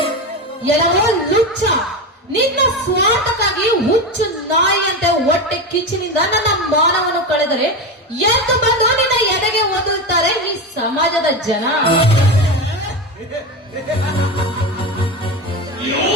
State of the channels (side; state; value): both; normal; correlation 0.19